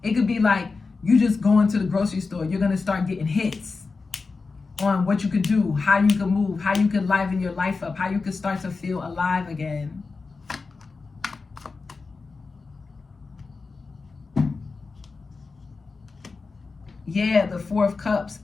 it could be like you just going to the grocery store. You're gonna start getting hits on what you could do, how you could move, how you could liven your life up, how you could start to feel alive again. Yeah, the Four of Cups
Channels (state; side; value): quieter; right; 4.3 dB